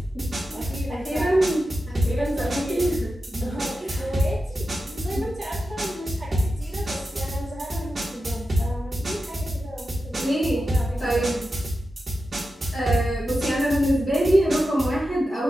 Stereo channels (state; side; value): normal; both; correlation 0.91